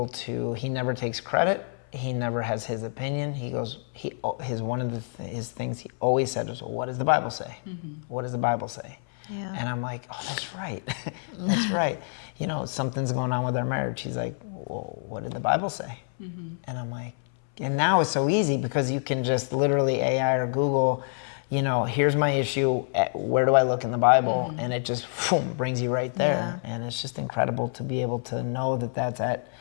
to, he never takes credit. He never has his opinion. One of his things he always said was, well, what does the Bible say? What does the Bible say? Yeah. And I'm like, oh, that's right. That's right. You know, something's going on with our marriage. He's like, well, what did the Bible say? And I'm like, and now it's so easy because you can just literally AI or Google, you know, here's my issue. Where do I look in the Bible? And it just boom, brings you right there. Yeah. And it's just incredible to be able to know that that's at.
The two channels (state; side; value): silent; right; 60 dB below the other